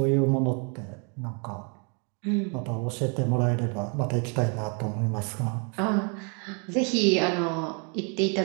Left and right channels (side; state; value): left; quieter; 36.1 dB